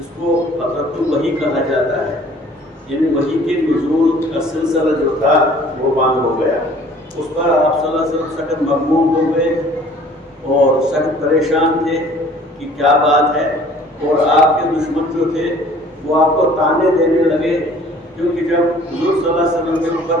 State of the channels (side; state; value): both; normal; correlation 0.52